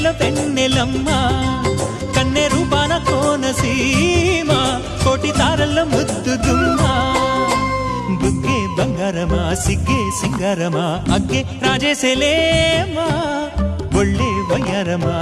వెన్నెలమ్మ కన్నె రూపాన కోనసీమ కోటి తారల్లో ముద్దుగుమ్మా బుగ్గే బంగారమా సిగ్గే సింగారమా అగ్గే రాజేసేలేమా ఒళ్ళే వయ్యారమా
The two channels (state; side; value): identical; both; correlation 1.00